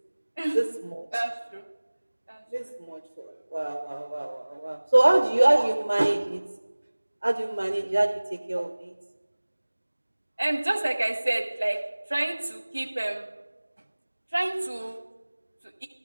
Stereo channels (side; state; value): both; inverted; correlation -1.00